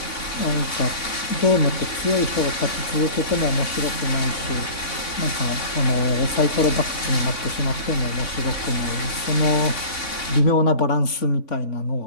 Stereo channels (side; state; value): right; late; 3.5 ms